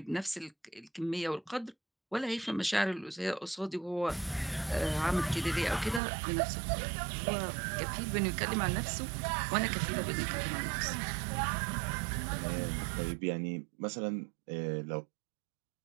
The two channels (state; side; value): drops out; left; at 6.0 s